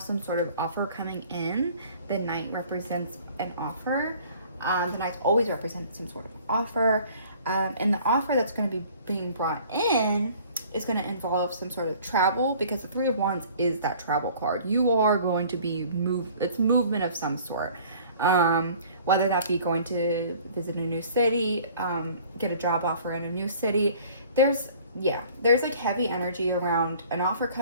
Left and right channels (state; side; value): inverted; both; correlation -0.51